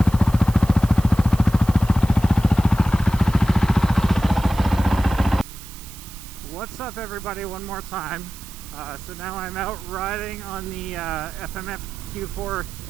What's up, everybody, one more time. So now I'm out riding on the FMF Q4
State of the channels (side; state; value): right; noise; hiss, 17 dB below the sound